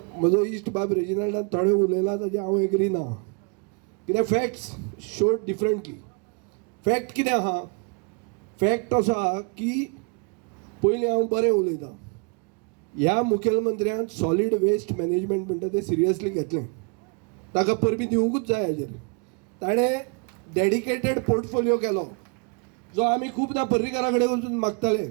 म्हजो इश्ट बाब रेजिनाल्डान थोडें उलयलां ताजें हांव एग्री ना, कित्याक फॅक्ट्स शोड डिफरंटली. फॅक्ट कितें आहा? फॅक्ट असो आहा की पयलीं हांव बरें उलयतां, ह्या मुखेलमंत्र्यान सॉलीड वेस्ट मॅनेजमेंट म्हणटा तें सिरियसली घेतलें, ताका परबी दिवंकूच जाय हाजेर. ताणें डेडिकेटेड पोर्टफोलिओ केलो जो आमी खुबदां पर्रीकारा कडेन वचून मागताले.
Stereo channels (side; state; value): left; quieter; 34.4 dB